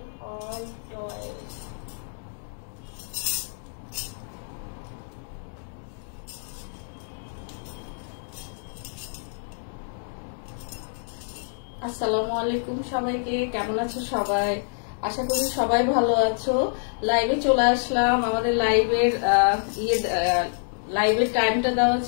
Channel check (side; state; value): right; silent; digital silence